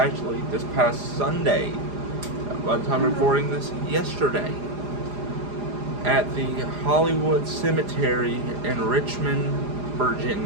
this past Sunday, by the time recording this, yesterday, at the Hollywood Cemetery in Richmond,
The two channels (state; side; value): late; left; 4.9 ms